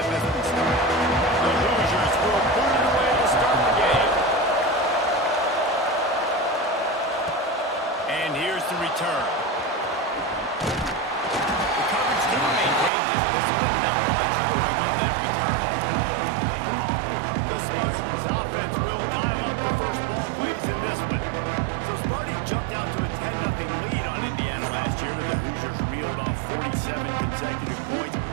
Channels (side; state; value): left; drops out; at 12.9 s